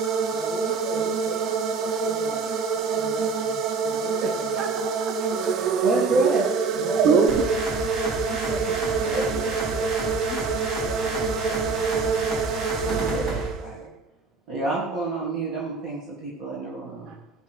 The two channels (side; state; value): left; quieter; 4.3 dB